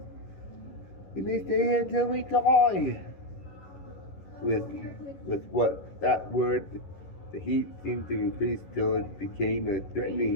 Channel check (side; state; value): right; late; 11 ms